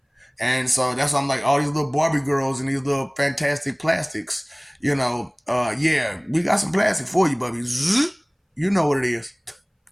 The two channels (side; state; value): both; identical; correlation 1.00